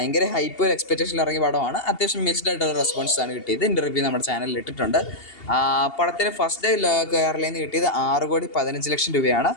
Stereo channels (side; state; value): right; late; 2.8 ms